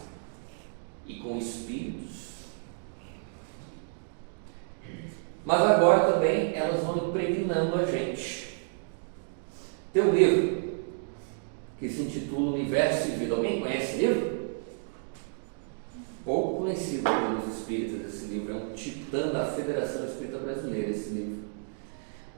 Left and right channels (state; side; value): silent; left; digital silence